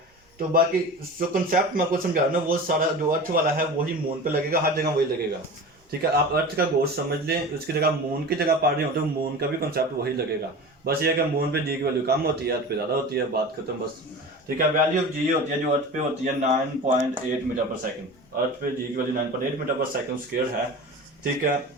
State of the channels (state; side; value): normal; both; correlation 0.33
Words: तो बाकी जो कंसेप्ट मैं आपको समझा रहा हूँ ना, वो सारा जो अर्थ वाला है वही मून पे लगेगा, हर जगह वही लगेगा, ठीक है। आप अर्थ का गोश्त समझ लें, उसकी जगह मून की जगह पढ़ रहे हो तो मून का भी कंसेप्ट वही लगेगा। बस ये है कि मून पे जी की वैल्यू कम होती है, अर्थ पे ज़्यादा होती है, बात खत्म बस, ठीक है। वैल्यू ऑफ जी होती है जो अर्थ पे होती है 9.8 मीटर पर सेकंड, अर्थ पे जी की वैल्यू 9.8 मीटर पर सेकंड स्क्वायर है, ठीक है।